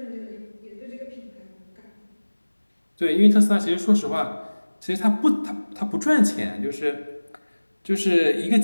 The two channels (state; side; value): inverted; both; correlation -1.00